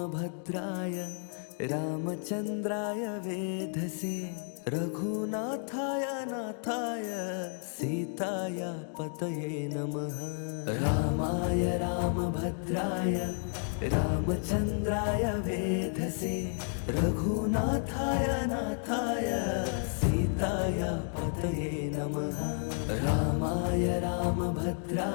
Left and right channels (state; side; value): silent; right; 56 dB below the other